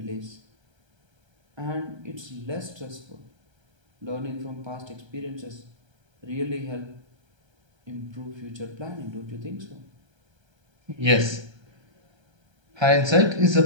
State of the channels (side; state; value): left; late; 1.3 ms